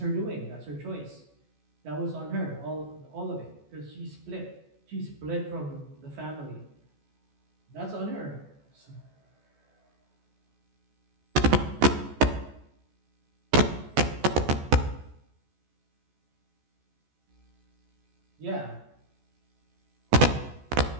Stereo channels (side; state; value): left; late; 14 ms